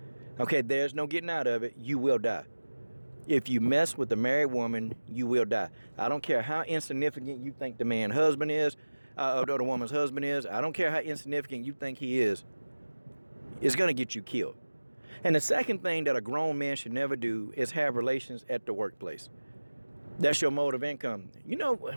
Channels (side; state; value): both; inverted; correlation -1.00